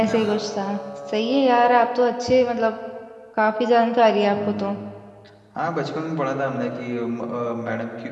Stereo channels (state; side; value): identical; both; correlation 1.00